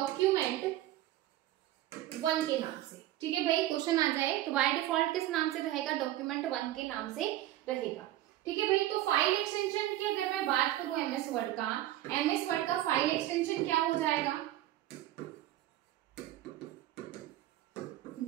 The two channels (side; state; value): left; quieter; 14.3 dB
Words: 1 के नाम से। ठीक है भाई, क्वेश्चन आ जाए तो बाय डिफॉल्ट किस नाम से रहेगा? डॉक्यूमेंट 1 के नाम से रहेगा। ठीक है भाई, तो फाइल एक्सटेंशन की अगर मैं बात करूं MS वर्ड का फाइल एक्सटेंशन क्या हो जाएगा?